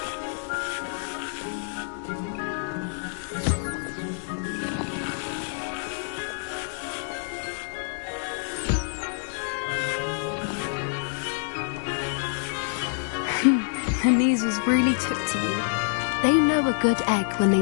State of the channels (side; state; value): right; silent; digital silence